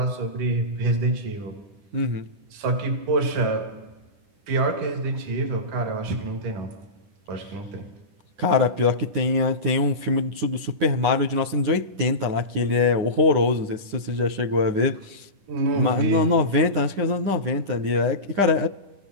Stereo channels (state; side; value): late; left; 10 ms